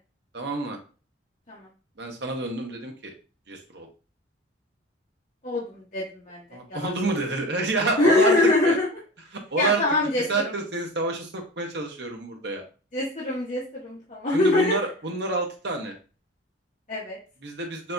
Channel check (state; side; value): normal; both; correlation 0.33